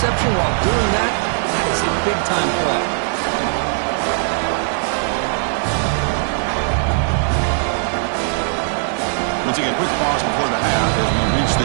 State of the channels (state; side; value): silent; left; digital silence